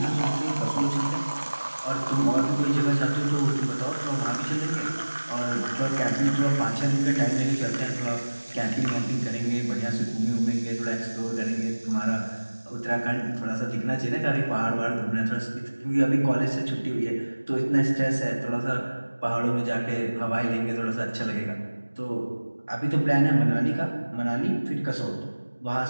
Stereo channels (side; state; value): both; inverted; correlation -1.00